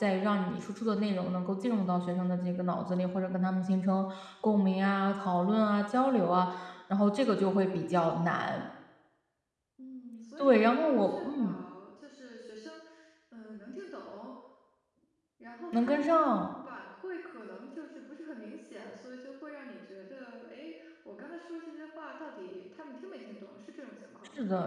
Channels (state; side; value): identical; both; correlation 1.00